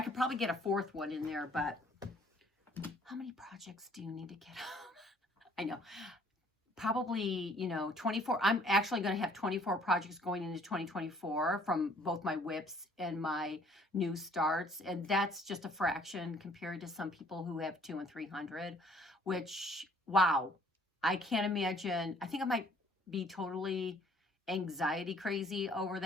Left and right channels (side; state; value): both; normal; correlation 0.59